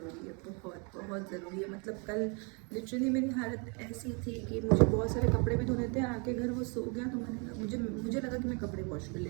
है, बहुत बहुत ज़रूरी है। मतलब कल लिटरली मेरी हालत ऐसी थी कि मुझे बहुत सारे कपड़े भी धोने थे, आके घर वो सो गया तो मुझे लगा कि मैं कपड़े वॉश कर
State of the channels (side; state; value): left; quieter; 34.1 dB